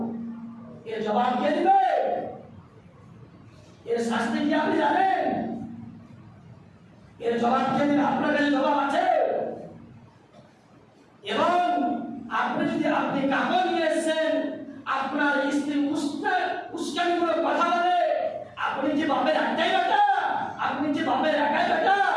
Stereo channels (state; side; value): identical; both; correlation 1.00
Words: এর জবাব কে দিবে? এর শাস্তি কি আপনি জানেন? এর জবাব কে দিবে? আপনার কাছে জবাব আছে? এবং আপনি কাপড় নিয়ে এসেছেন, আপনার স্ত্রী উস্কানি করে কথা বলে, আপনি যে বাপের একটাই বেটা, আপনি যে বাপের একাই বেটা,